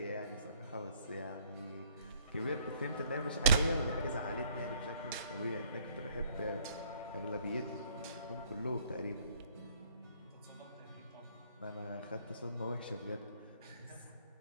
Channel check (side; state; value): both; inverted; correlation -0.63